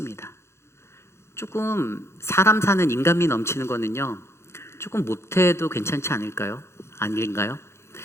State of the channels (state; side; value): late; right; 0.13 ms